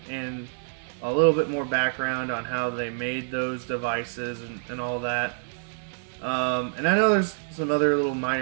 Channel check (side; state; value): left; silent; 60 dB below the other